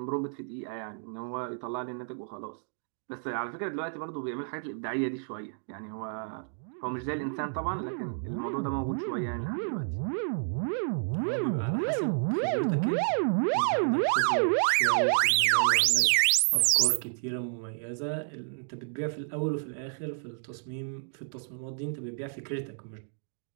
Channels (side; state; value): left; silent; digital silence